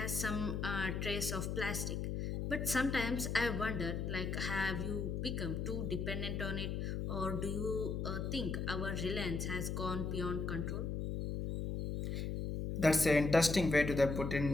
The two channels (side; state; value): left; noise; hum, 2 dB below the sound